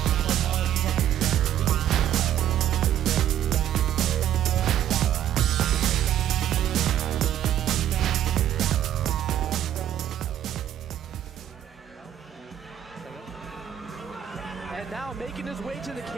And now making his way to the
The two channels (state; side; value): quieter; left; 11.1 dB